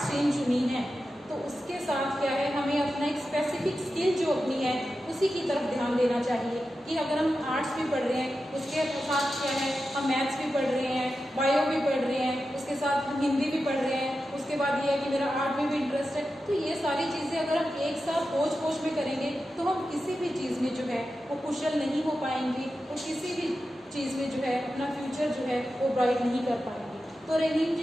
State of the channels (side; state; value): both; normal; correlation 0.91